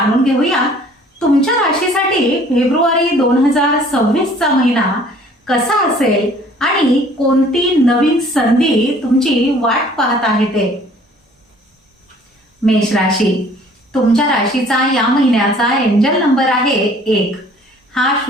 घेऊया तुमच्या राशीसाठी फेब्रुवारी 2026 चा महिना कसा असेल आणि कोणती नवीन संधी तुमची वाट पाहत आहे ते। मेष राशी, तुमच्या राशीचा या महिन्याचा एंजल नंबर आहे 1। हा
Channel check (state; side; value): normal; both; correlation 0.54